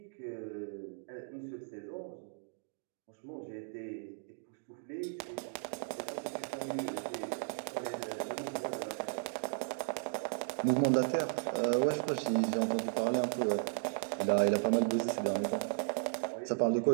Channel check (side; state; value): left; silent; digital silence